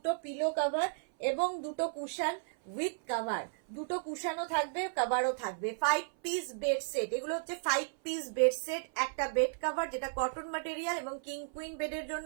পিলো কভার এবং দুটো কুশন উইথ কভার, দুটো কুশনও থাকবে, কভারও থাকবে। 5 পিস বেড সেট, এগুলো হচ্ছে 5 পিস বেড সেট। একটা বেড কভার যেটা কটন ম্যাটেরিয়াল এবং কিং কুইন বেডের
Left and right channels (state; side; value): silent; left; 55 dB below the other